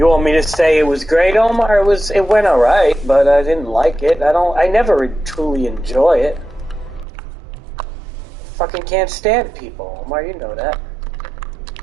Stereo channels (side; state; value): left; drops out; at 7.1 s